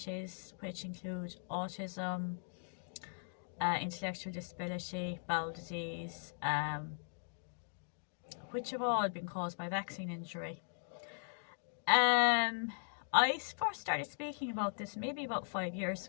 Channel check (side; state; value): right; silent; digital silence